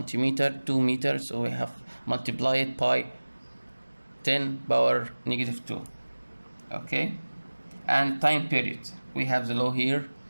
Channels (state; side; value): inverted; both; correlation -1.00